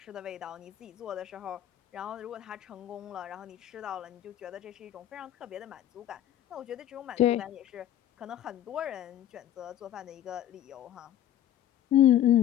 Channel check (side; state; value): right; quieter; 11.6 dB